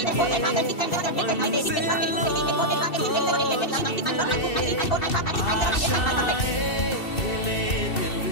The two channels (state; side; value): late; right; 2.7 ms